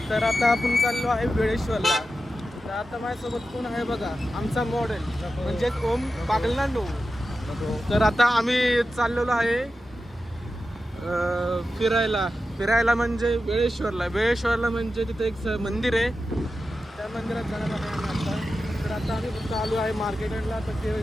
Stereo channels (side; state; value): both; normal; correlation 0.92